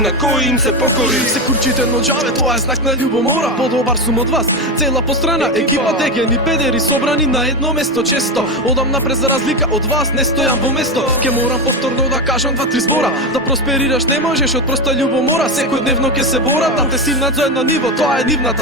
кои им се покори. Се курчите но џаве, тоа е знак на љубомора. Подобар сум од вас, цела пострана екипа дегени педери собрани на едно место често. Одам напред за разлика од вас, не стојам во место. Ке морам повторно да кажам 2-3 збора. Да просперираш не можеш од проста љубомора. Секојдневно ке се борат да те симнат за едно ниво, тоа е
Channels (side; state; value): both; normal; correlation 0.15